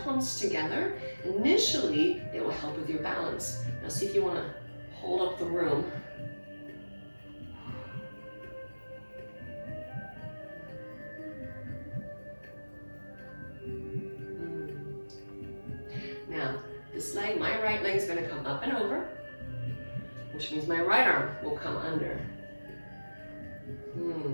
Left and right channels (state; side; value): inverted; both; correlation -1.00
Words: palms together, initially it will help with your balance. Now see if you want to hold up the room. Now, this leg, my right leg is going to come up and over, which means my right arm will come under.